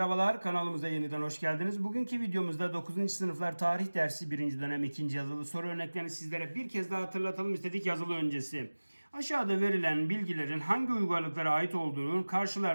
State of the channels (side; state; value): both; inverted; correlation -1.00